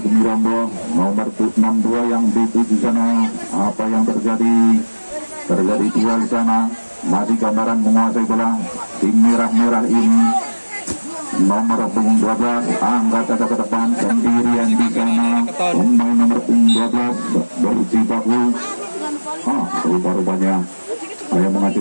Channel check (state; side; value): inverted; both; correlation -1.00